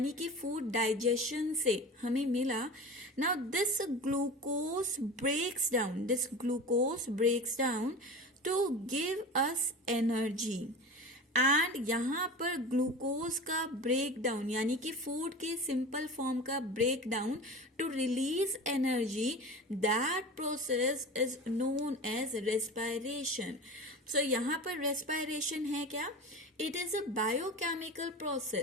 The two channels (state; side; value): normal; both; correlation 0.32